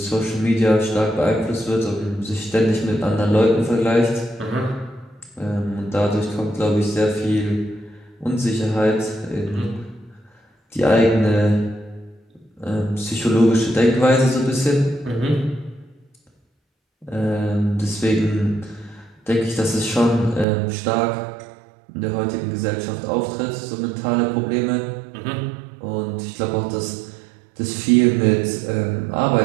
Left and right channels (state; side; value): drops out; left; at 20.5 s